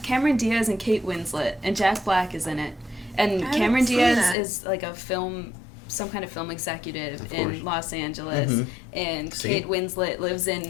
Cameron Diaz and Kate Winslet, and Jack Black is in it. And I Cameron haven't seen Diaz that. is like some kind of film executive Of in course. Los Angeles. Mhm. And See? Kate Winslet lives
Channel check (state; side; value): drops out; right; at 4.4 s